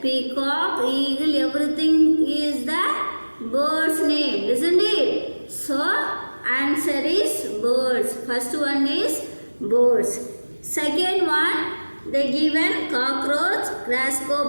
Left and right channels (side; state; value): both; inverted; correlation -1.00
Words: eagle, everything is the bird's name, isn't it? So, answer is birds. First one is birds. Second one, they given cockroach,